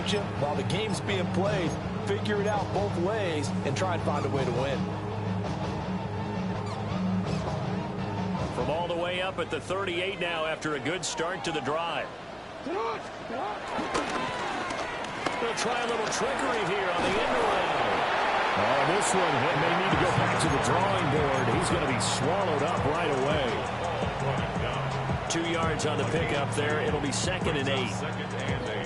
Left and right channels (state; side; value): identical; both; correlation 1.00